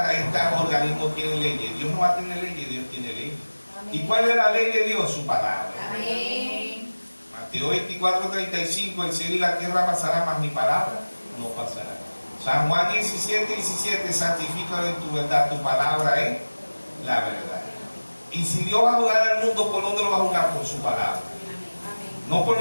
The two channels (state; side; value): inverted; both; correlation -1.00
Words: organismos tienen leyes, Dios no va a tener leyes, Dios tiene leyes. Amén. ¿Y cuál es la ley de Dios? Su palabra. Amén. Mateo 24:35, el cielo y la tierra pasarán, mas mi palabra no pasará. San Juan 17:17, santifícalo en tu verdad, tu palabra es la verdad. Y si Dios va a juzgar al mundo, ¿por dónde lo va a juzgar? Por su palabra. No por